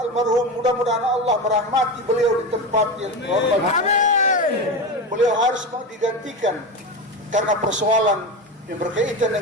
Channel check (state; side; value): normal; both; correlation 0.21